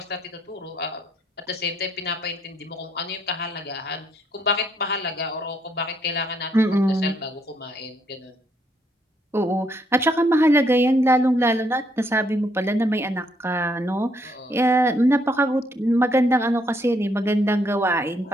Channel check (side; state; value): both; normal; correlation 0.71